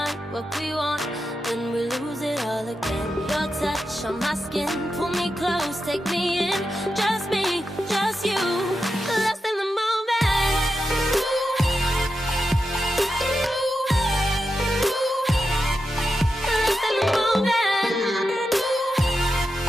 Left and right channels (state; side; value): normal; both; correlation 0.88